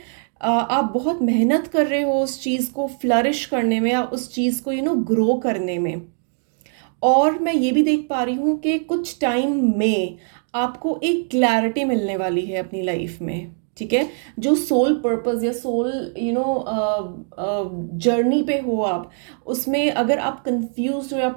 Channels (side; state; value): left; silent; 62 dB below the other